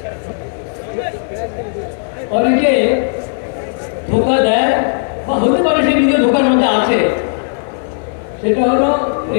অনেকে ধোকা দেয় বা হতে পারে সে নিজের ধোকার মধ্যে আছে। সেটা হলো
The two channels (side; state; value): right; silent; 59 dB below the other